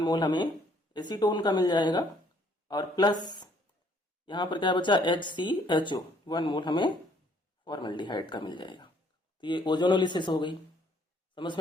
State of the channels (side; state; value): both; normal; correlation 0.63